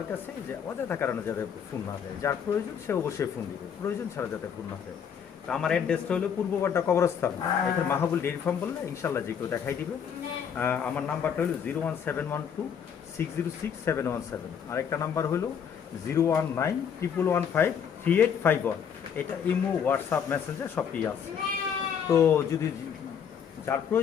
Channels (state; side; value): quieter; right; 7.6 dB